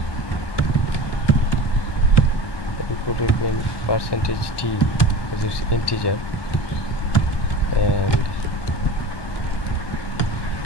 Input will be in percentage %t because it's integer, and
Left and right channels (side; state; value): right; late; 1.1 ms